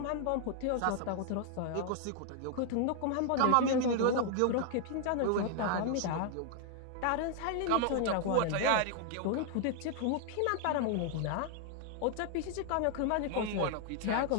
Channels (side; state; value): both; different; correlation 0.00